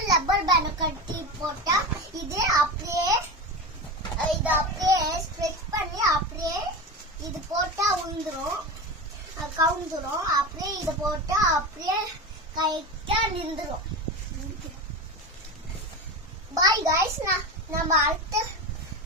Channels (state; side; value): normal; both; correlation 0.24